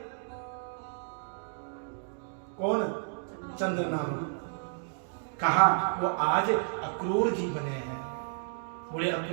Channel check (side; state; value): left; silent; digital silence